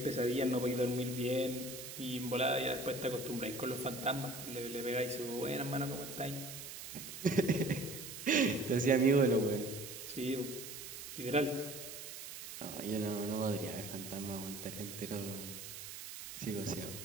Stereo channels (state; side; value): noise; right; hiss, 10 dB below the sound